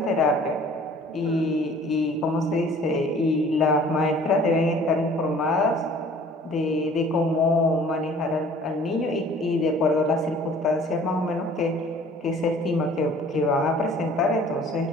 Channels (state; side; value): normal; both; correlation 0.51